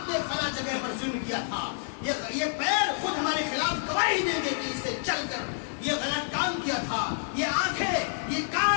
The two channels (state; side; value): silent; right; 58 dB below the other